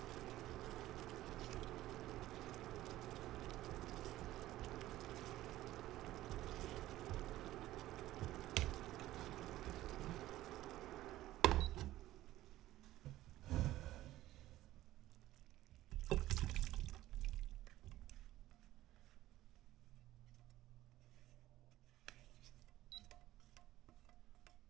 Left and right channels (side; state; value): left; quieter; 15.3 dB